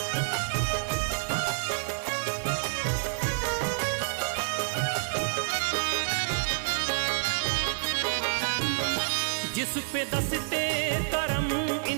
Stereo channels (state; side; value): silent; left; 55 dB below the other